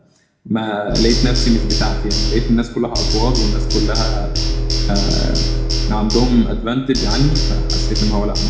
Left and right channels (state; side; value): identical; both; correlation 1.00